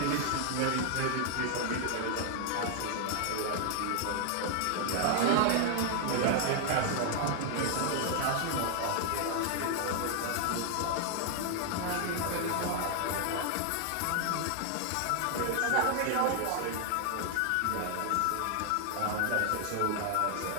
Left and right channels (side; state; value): both; different; correlation 0.00